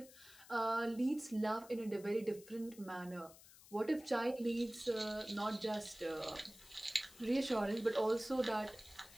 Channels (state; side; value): noise; left; hiss, 20 dB below the sound